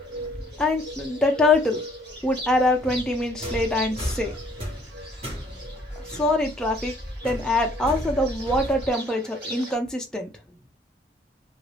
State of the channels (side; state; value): both; normal; correlation 0.61